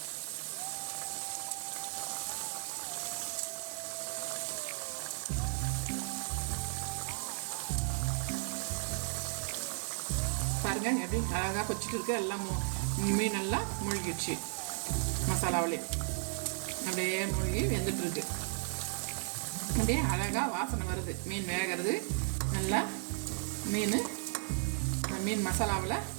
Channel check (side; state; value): left; silent; 54 dB below the other